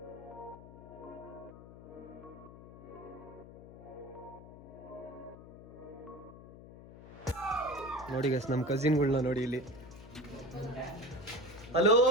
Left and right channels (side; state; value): left; noise; hum, 16 dB below the sound